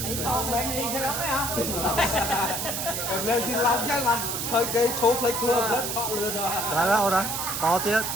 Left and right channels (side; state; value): right; noise; hiss, 2 dB below the sound